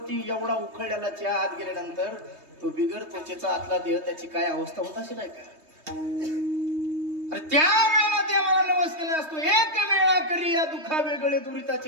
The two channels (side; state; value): left; late; 3.2 ms